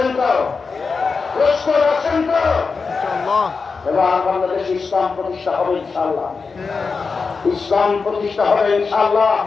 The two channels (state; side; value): quieter; right; 4.8 dB